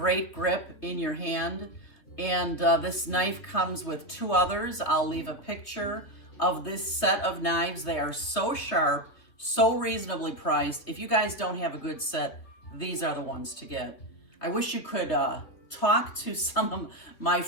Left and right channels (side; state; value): right; late; 3.0 ms